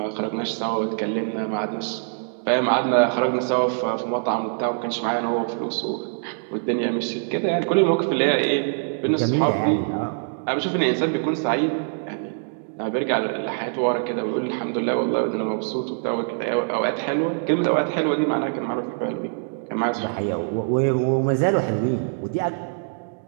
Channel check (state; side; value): silent; left; digital silence